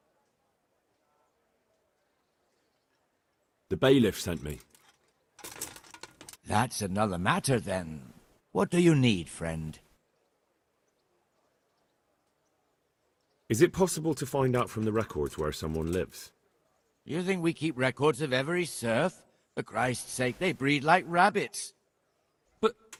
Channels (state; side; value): identical; both; correlation 1.00